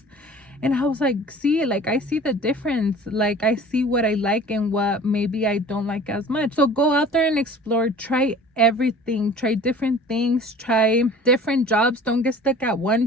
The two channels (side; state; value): both; normal; correlation 0.44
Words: and I was like, see, like, I see the difference. Like, I see what I like and what maybe I don't like as much. So go out there and explore. Try everything. Try different things. Try different jobs. Don't get stuck at one